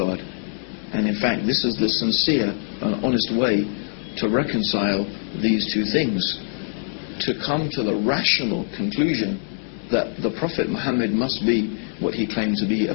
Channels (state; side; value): silent; right; digital silence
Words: And in fact, this is the sincere and honest way to reconcile these two things, to come to the rational conclusion that the Prophet Muhammad must be what he claimed to be, a